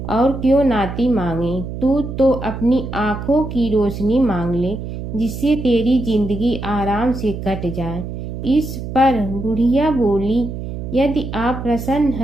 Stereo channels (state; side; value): noise; right; hum, 7 dB below the sound